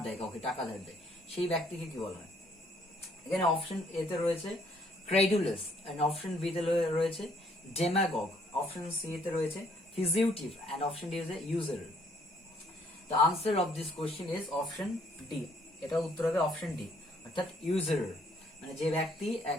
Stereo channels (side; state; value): both; normal; correlation 0.65